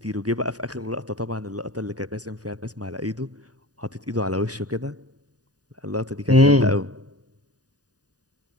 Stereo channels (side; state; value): left; late; 0.68 ms